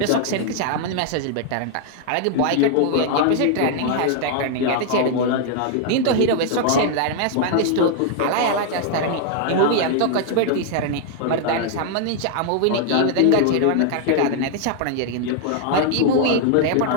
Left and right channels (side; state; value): both; different; correlation 0.00